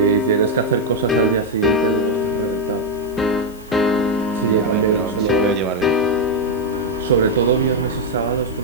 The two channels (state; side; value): noise; left; hiss, 24 dB below the sound